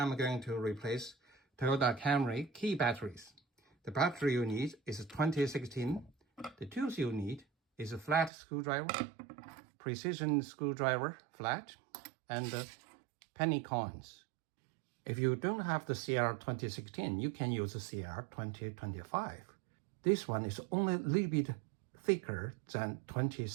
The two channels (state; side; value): drops out; left; at 8.3 s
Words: going to replace Toyota Camry key batteries. The battery you need is 2016. The tools you need is a flat screwdriver, precision screwdriver flat, and penny coins. If you don't have the CR 2016, you can use the CR 2025. This one is only a little bit thicker than